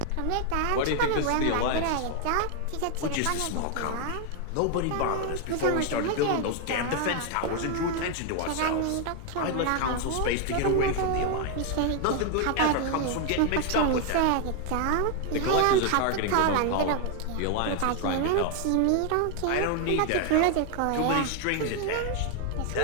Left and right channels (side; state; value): both; different; correlation 0.01